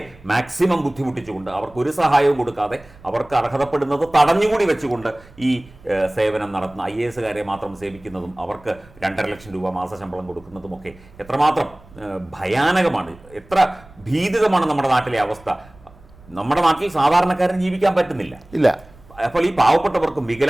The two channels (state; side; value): noise; right; rumble, 24 dB below the sound